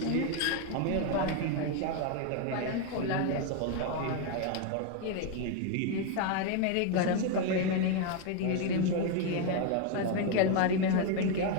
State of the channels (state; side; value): different; both; correlation 0.01